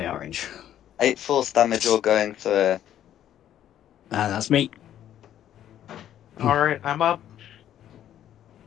orange. 8 force damage all going through. And that's me. All right, I'm up.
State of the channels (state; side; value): quieter; right; 11.1 dB